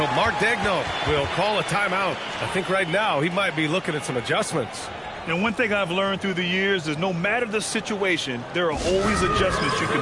Mark Daigneault will call a timeout. I think right now he might be looking at some adjustments. And one thing I've learned through the years is no matter the situation, there are always adjustments you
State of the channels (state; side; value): identical; both; correlation 1.00